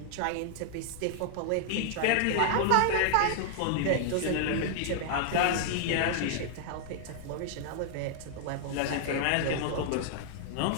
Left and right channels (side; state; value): both; different; correlation -0.01